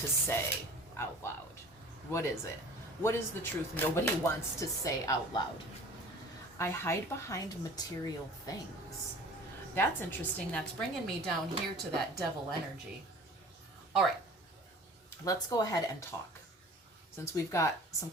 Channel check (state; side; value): normal; both; correlation 0.44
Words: to say out loud. What is it? What is the truth nobody wants to say out loud? I hide behind material things. That's interesting. That's bringing me down here to that devil energy. All right. Let's go ahead and talk. Since we've got some